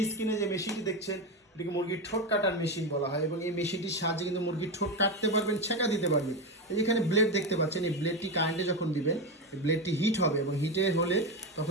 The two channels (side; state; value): both; normal; correlation 0.15